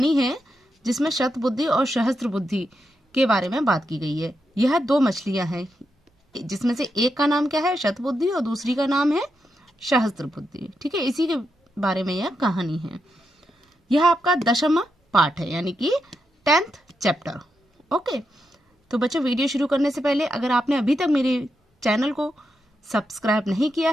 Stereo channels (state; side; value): normal; both; correlation 0.84